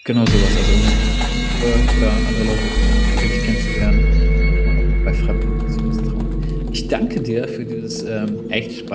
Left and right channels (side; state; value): both; identical; correlation 1.00